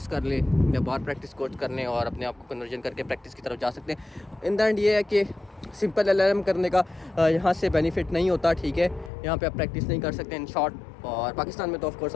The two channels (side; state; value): right; drops out; at 9.1 s